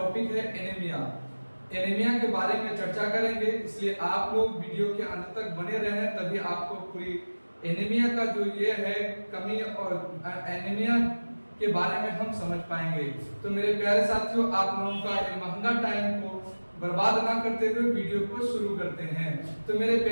है एनीमिया। एनीमिया के बारे में चर्चा करेंगे, इसलिए आप लोग वीडियो के अंत तक बने रहें, तभी आपको पूरी एनीमिया का जो ये है कमी और एनीमिया के बारे में हम समझ पाएंगे। तो मेरे प्यारे साथियों, आप लोगों का ये महंगा टाइम को बर्बाद ना करते हुए वीडियो को शुरू करते हैं। तो मेरे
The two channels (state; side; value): inverted; both; correlation -1.00